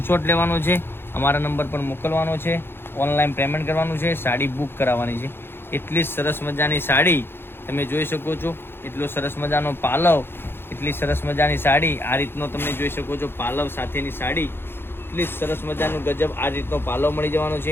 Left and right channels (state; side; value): late; right; 0.11 ms